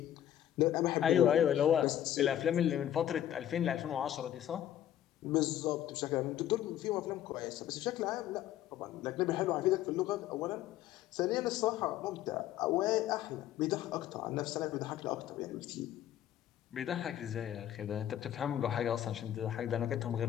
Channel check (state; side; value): quieter; right; 11.6 dB